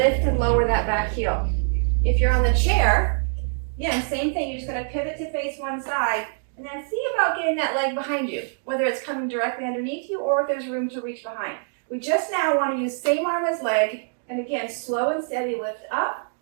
and lower that back heel. If you're on the chair, again, same thing. You're just going to pivot to face one side and then see about getting that leg behind you, whether it's coming directly underneath you or if there's room to reach behind. We just now want to use same arm as leg, and again, slow and steady lift up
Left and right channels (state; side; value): silent; left; digital silence